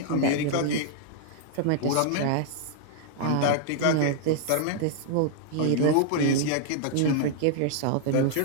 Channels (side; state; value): both; different; correlation 0.00